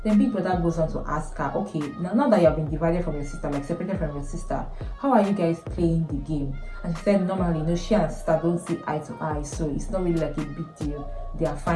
Then Big Brother goes on to ask her, okay, now that you have been divided from your sister, like separated from your sister, how are you guys playing the game? And she said, normally, you know, she and her sister don't see eye to eye, so it's not really like a big deal. They are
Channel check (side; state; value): both; identical; correlation 1.00